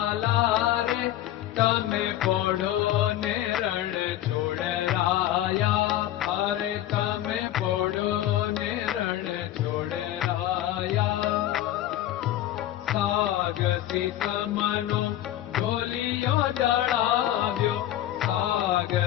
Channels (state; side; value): quieter; right; 13.3 dB